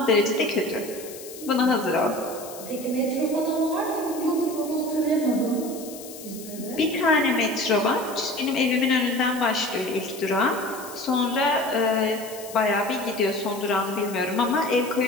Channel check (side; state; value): left; noise; hiss, 15 dB below the sound